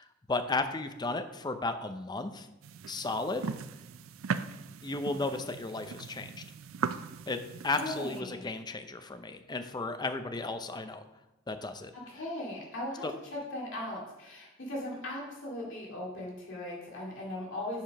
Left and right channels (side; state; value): both; normal; correlation 0.30